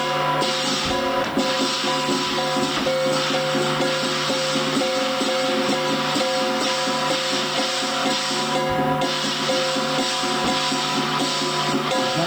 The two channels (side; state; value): left; noise; hiss, 22 dB below the sound